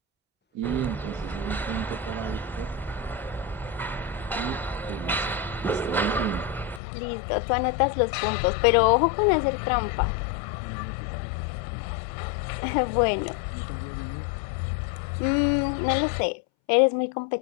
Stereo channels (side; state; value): right; drops out; at 6.8 s